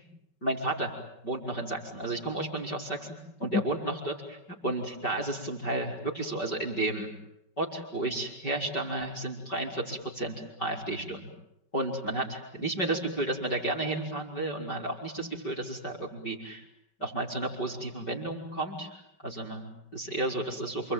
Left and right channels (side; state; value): right; late; 5.3 ms